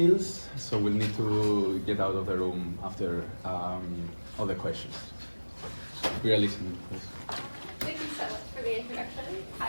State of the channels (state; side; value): inverted; both; correlation -1.00